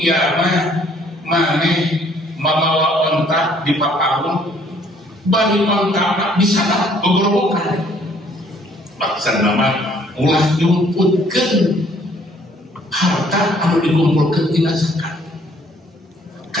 maneh mabawa onta di papahun, bari onta di sana gogorobokan. Maksudna mah ulah nyumputkeun harta anu dikumpulkeun tina zakat.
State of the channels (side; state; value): both; normal; correlation 0.62